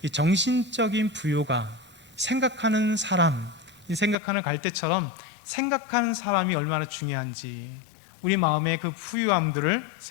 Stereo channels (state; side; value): drops out; right; at 4.2 s